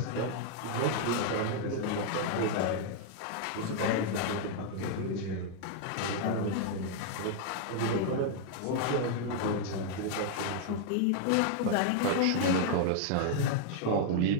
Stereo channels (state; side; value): different; both; correlation 0.00